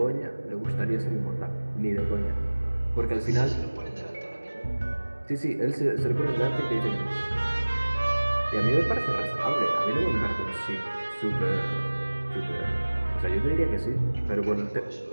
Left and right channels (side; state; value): both; inverted; correlation -1.00